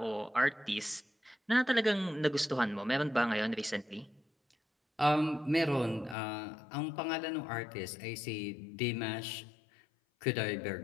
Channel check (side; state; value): right; drops out; at 6.2 s